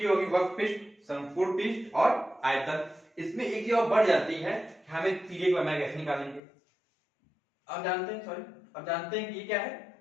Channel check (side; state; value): right; drops out; at 6.4 s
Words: होगी वक्र पृष्ठ, संपूर्ण पृष्ठ और आयतन। इसमें एक चीज और बढ़ जाती है कि हमें तीरे की लंबाई कैसे निकालेंगे। अब जानते हैं कि ये क्या है,